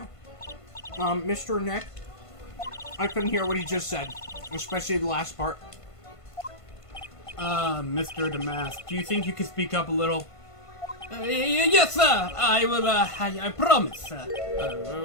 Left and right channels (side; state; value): right; late; 1.5 ms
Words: Mr. Nick? I couldn't hear what he just said. Especially the last part. Mr. Damask, do you think you could speak up a little? Yes, sir! I will, I promise, sir.